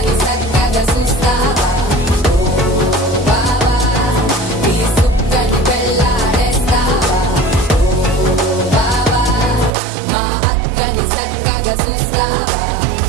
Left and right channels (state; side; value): drops out; left; at 9.7 s